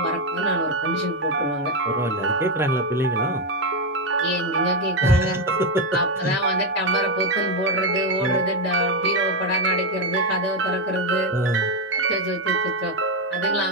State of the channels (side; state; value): both; normal; correlation 0.07